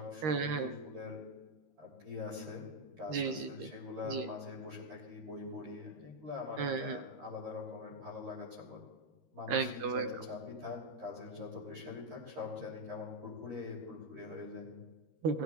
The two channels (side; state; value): left; late; 13 ms